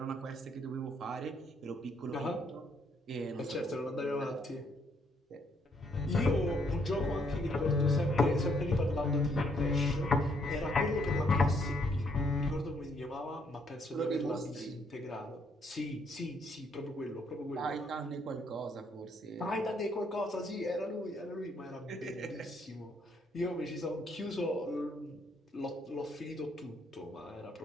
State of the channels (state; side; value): normal; both; correlation 0.70